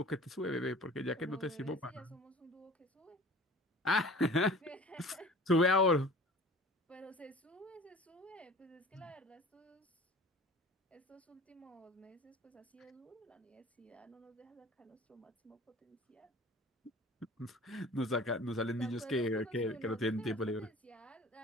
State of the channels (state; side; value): normal; both; correlation 0.44